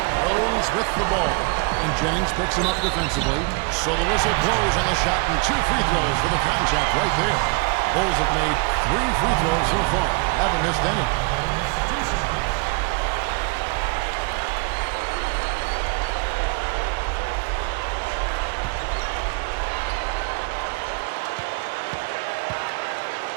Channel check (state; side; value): quieter; left; 31.1 dB